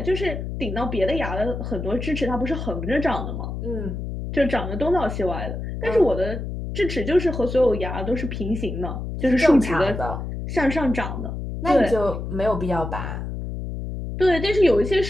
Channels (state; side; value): noise; left; hum, 6 dB below the sound